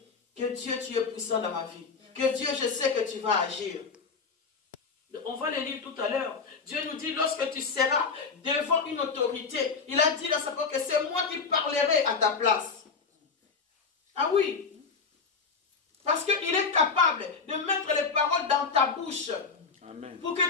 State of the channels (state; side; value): quieter; right; 5.0 dB